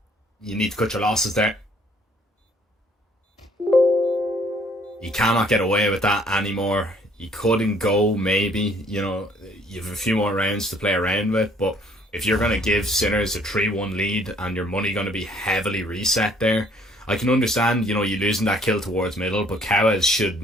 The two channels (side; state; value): both; normal; correlation 0.61